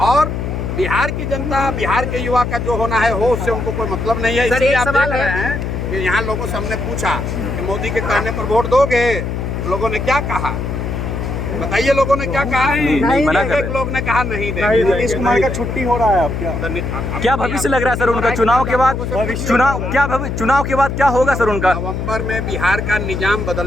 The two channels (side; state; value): left; noise; hum, 3 dB below the sound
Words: और बिहार की जनता, बिहार के युवा का जो होना है हो, उससे उनको कोई मतलब नहीं है। इसलिए आप देख रहे हैं कि यहाँ लोगों से हमने पूछा कि मोदी के कहने पर वोट दोगे, तो लोगों ने क्या कहा बताइए। लोगों ने क्या कहा? एक लोग ने कहा नहीं देंगे। नीतीश कुमार का छुट्टी हो रहा है। अब क्या भविष्य लग रहा है सर उनका चुनाव के बाद? चुनाव के बाद क्या होगा सर उनका? नवंबर में बिहार का निजाम